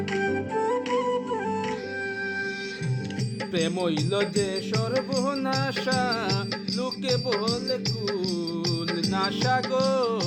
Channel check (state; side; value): identical; both; correlation 1.00